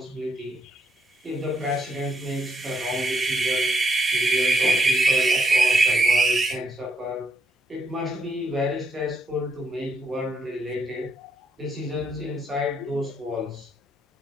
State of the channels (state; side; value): normal; both; correlation 0.75